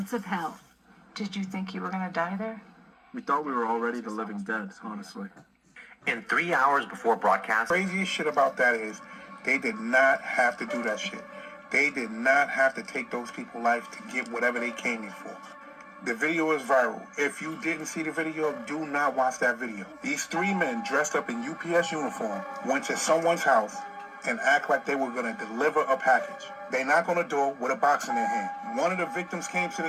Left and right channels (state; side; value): identical; both; correlation 1.00